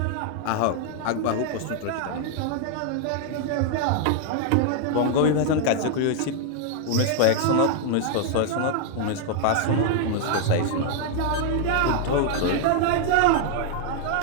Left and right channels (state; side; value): different; both; correlation 0.00